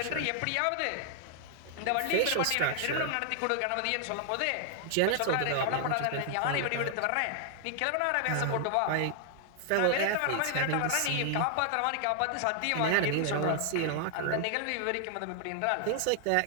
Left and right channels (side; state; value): both; different; correlation 0.00